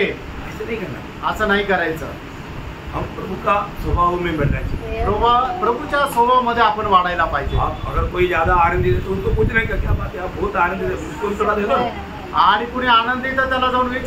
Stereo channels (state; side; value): identical; both; correlation 1.00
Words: ऐसे नहीं करना। असं नाही करायचं। हम प्रभु का स्वभाव में बनना चाहिए। प्रभूच्या स्वभावामध्ये आपण वाढायला पाहिजे। आप अगर कोई ज्यादा आनंदित है तो उनको पूछने का क्या बात है, आप बहुत आनंदित है, उसको भी थोड़ा दे दो। आणि कुणी आनंदित आहे त्याला जाऊन